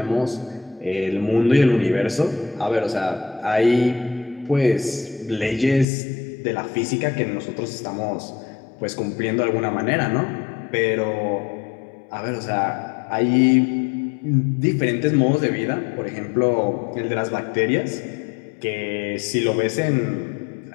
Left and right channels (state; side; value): drops out; right; at 5.9 s